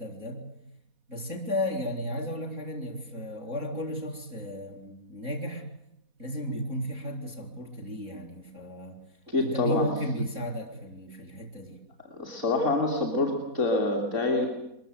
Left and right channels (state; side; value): late; left; 4.1 ms